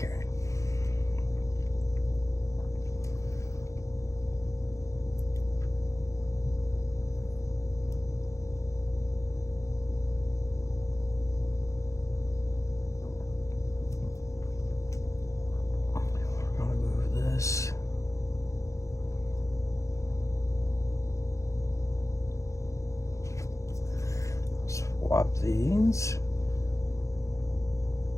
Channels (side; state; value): right; late; 0.15 ms